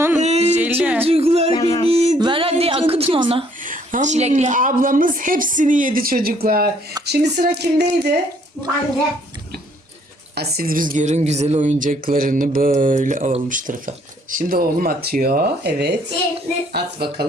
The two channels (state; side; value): normal; both; correlation 0.64